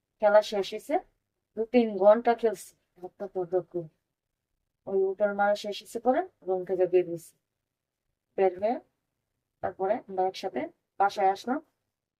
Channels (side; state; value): both; identical; correlation 1.00